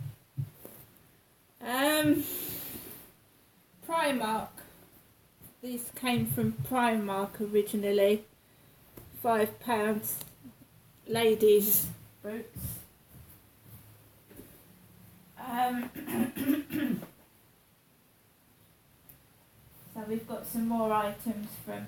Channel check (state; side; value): identical; both; correlation 1.00